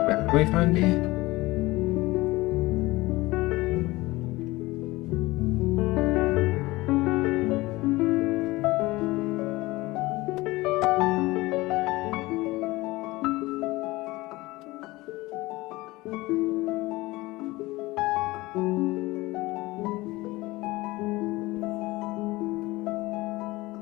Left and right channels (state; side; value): quieter; right; 20.3 dB